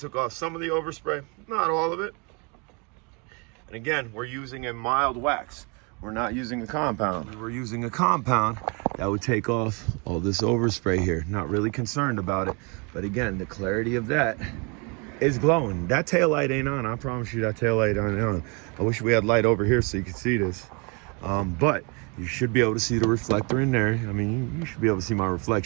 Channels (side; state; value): left; quieter; 31.9 dB